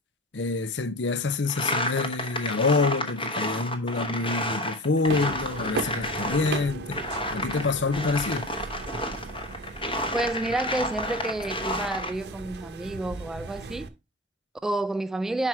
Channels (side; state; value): both; normal; correlation 0.31